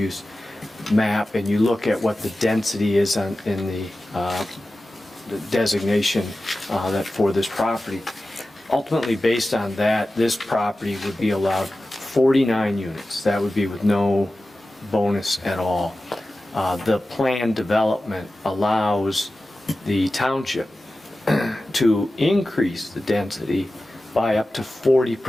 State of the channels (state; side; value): normal; both; correlation 0.94